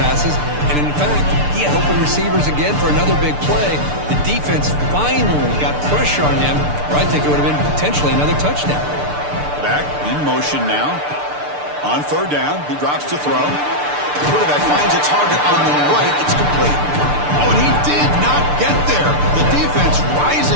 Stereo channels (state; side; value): late; left; 6.8 ms